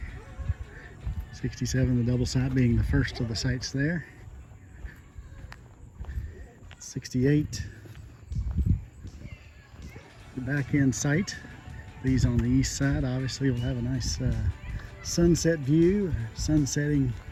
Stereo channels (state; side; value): identical; both; correlation 1.00